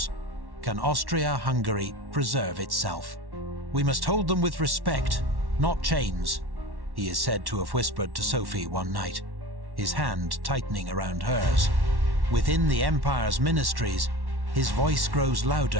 can Austria-Hungary preserve itself. "We must hold them with respect, not chains," he is said to have whispered to Sophie one night, his hand tightening around hers. Within the empire's ministries, his voice grows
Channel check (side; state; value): left; late; 1.1 ms